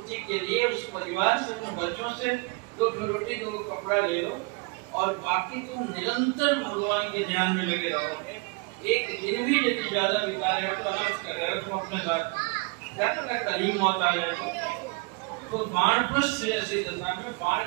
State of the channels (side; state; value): left; quieter; 29.2 dB